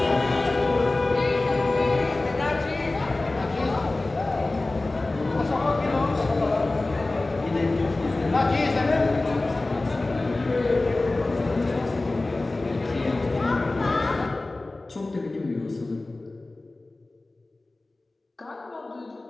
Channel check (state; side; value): quieter; right; 3.0 dB